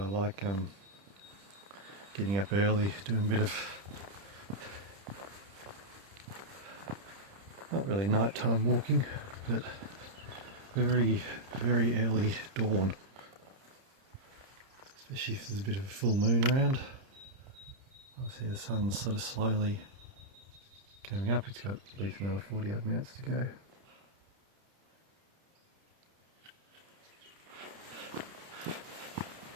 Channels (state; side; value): late; left; 30 ms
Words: like getting up early, doing a bit of, not really nighttime walking, but very, very early dawn. Especially if there's a bit of a full moon around. I see the sun's sort of slowly coming up. It's got at least another 40 odd minutes to go.